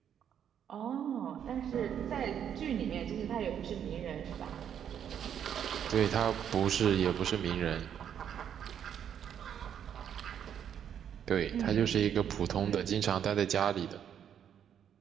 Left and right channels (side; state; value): left; quieter; 9.0 dB